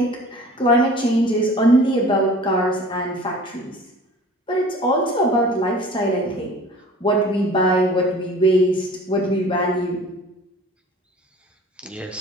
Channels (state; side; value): normal; both; correlation 0.44